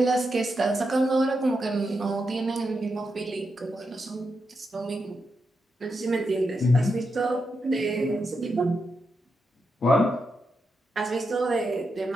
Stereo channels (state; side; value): normal; both; correlation 0.85